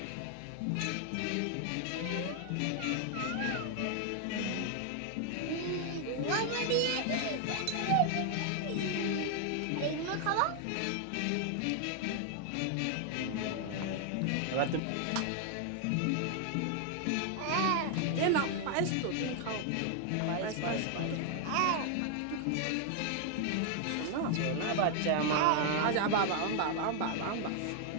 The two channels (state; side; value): different; both; correlation 0.00